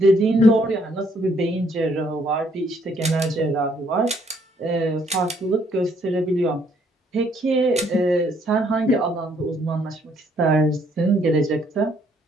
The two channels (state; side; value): normal; both; correlation 0.67